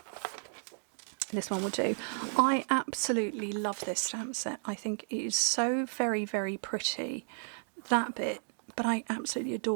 This one will do. I absolutely love this stamp set. I think it is so very, very pretty. That bit, but I absolutely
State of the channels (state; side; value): silent; left; digital silence